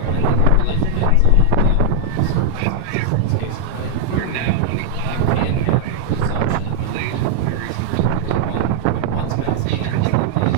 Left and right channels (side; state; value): both; different; correlation 0.00